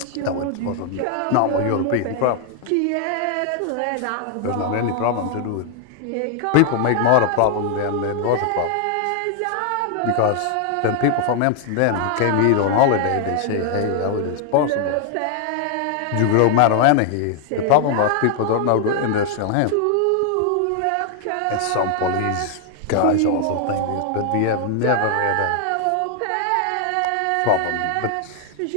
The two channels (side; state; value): both; different; correlation 0.00